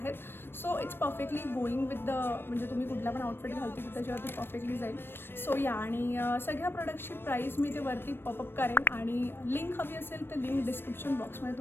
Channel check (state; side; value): late; right; 0.10 ms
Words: So it's perfectly going with the म्हणजे तुम्ही कुठला पण आउटफिट घालते की त्याच्यावरती परफेक्टली जाईल. सो या आणि सगळ्या प्रोडक्टची प्राईस मी ते वरती पॉपअप करेन आणि लिंक हवी असेल तर लिंक डिस्क्रिप्शन बॉक्समध्ये